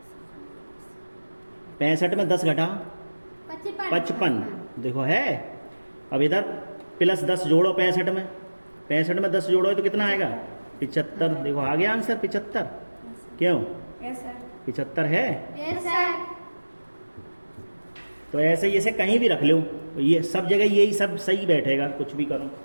65 में 10 घटाओ 55। देखो है। अब इधर +10 जोड़ो 65 में, 65 में 10 जोड़ो तो कितना आएगा? 75। देखो आ गया आंसर 75। क्यों? Yes sir. 75 है। Yes sir. तो ऐसे ही इसे कहीं भी रख लो, ये सब जगह यही सब सही बैठेगा, कुछ भी करो।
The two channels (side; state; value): both; inverted; correlation -1.00